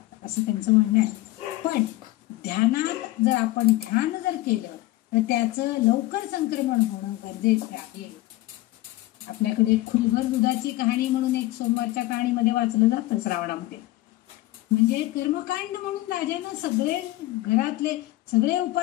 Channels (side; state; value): right; quieter; 17.7 dB